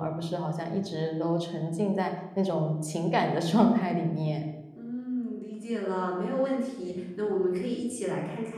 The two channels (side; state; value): both; identical; correlation 1.00